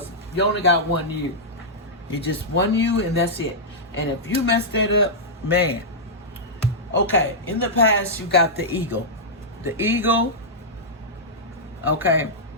you only got one you. You just one you, and that's it. And if you mess that up, man. Okay, in the past, you got the ego. The ego, okay,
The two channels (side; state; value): both; normal; correlation -0.10